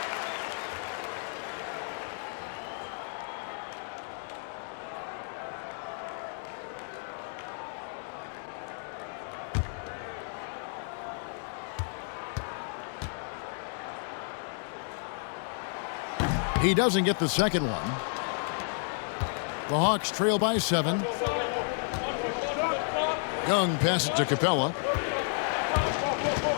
He doesn't get the second one. The Hawks trail by 7. Young passes to Capella.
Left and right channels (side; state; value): right; silent; 57 dB below the other